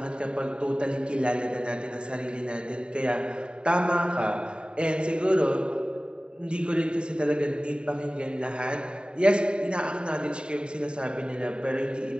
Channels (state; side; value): late; left; 0.051 ms